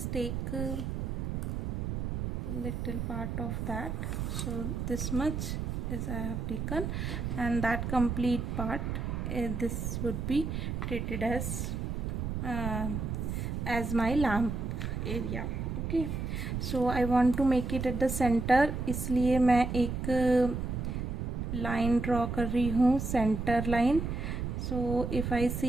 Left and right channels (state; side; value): noise; right; rumble, 3 dB below the sound